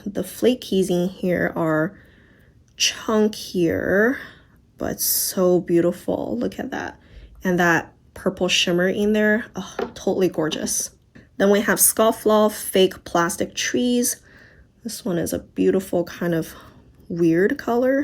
the flakies in here are chunkier, but so beautiful. Look at that. And that purple shimmer in there, oh, totally gorgeous. Then we have Scofflaw Fake Plastic Trees. This one is a beautiful kind of weird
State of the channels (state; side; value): identical; both; correlation 1.00